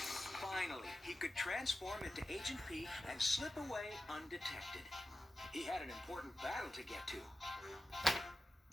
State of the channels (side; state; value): both; normal; correlation 0.93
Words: he could transform into Agent P and slip away undetected. He had an important battle to get to.